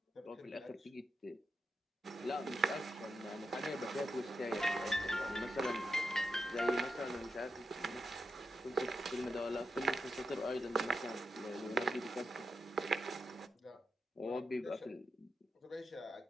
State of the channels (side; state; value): both; normal; correlation 0.87